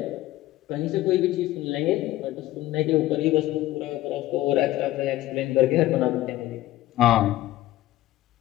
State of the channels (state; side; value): quieter; right; 15.8 dB